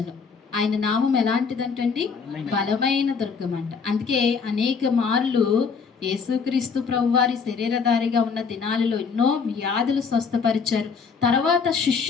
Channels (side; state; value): right; quieter; 5.6 dB